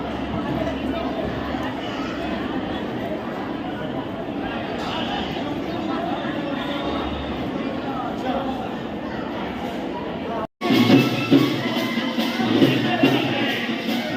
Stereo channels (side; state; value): both; identical; correlation 1.00